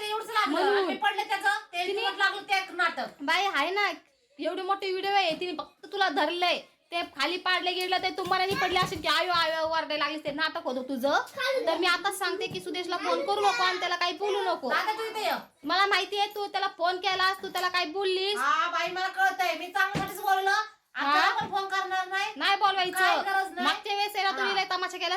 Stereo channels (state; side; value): identical; both; correlation 1.00